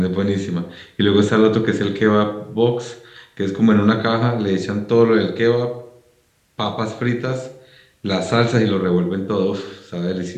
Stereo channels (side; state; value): both; identical; correlation 1.00